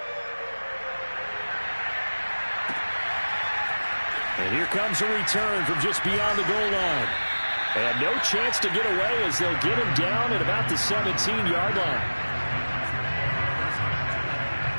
And here comes a return from just beyond the goal line. And no chance to get away as they'll get him down at about the 17-yard line.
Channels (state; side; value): inverted; both; correlation -1.00